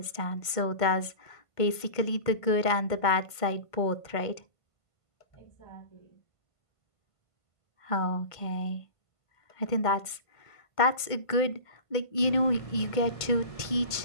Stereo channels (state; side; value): late; right; 1.5 ms